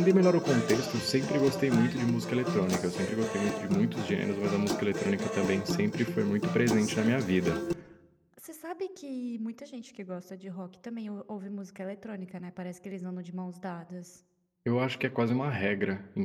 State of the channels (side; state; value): both; identical; correlation 1.00